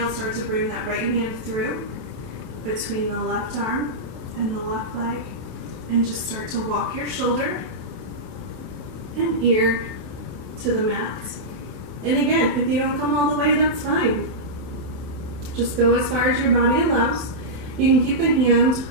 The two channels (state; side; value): late; left; 28 ms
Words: start to bring that right hand through between the left arm and the left leg, and just start to walk your shoulder and ear to the mat. And again, if you don't come all the way, that's fine. Just go as far as your body allows. You can keep the hand